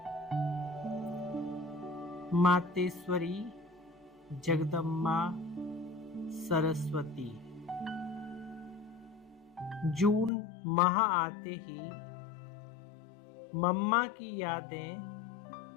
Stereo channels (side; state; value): right; drops out; at 10.3 s